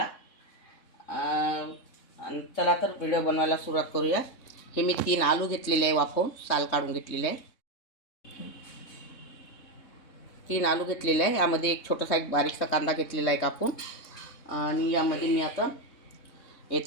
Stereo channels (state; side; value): late; right; 3.7 ms